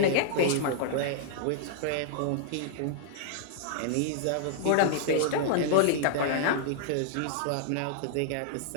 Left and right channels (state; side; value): different; both; correlation -0.01